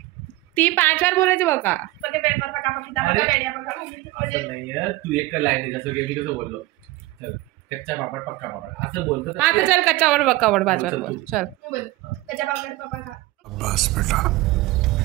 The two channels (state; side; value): quieter; left; 18.8 dB